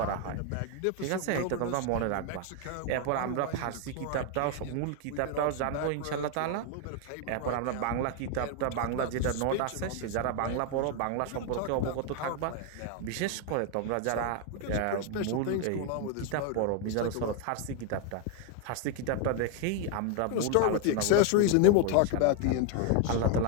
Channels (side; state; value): both; different; correlation 0.01